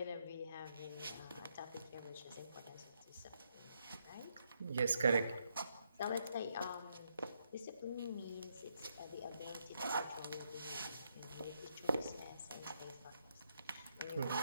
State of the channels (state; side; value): inverted; both; correlation -0.77